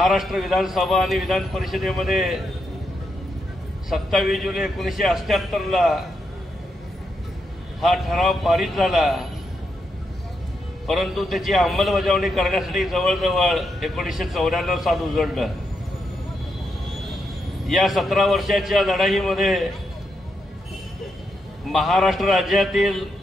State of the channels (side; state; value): both; normal; correlation 0.82